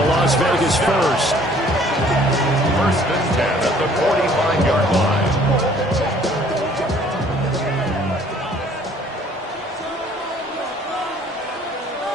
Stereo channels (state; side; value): normal; both; correlation 0.57